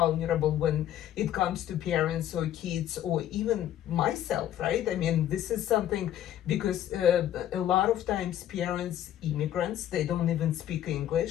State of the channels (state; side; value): quieter; right; 11.6 dB